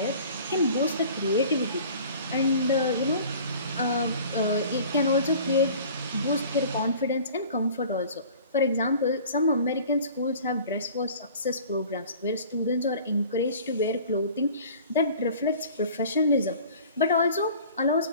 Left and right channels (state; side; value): inverted; both; correlation -0.46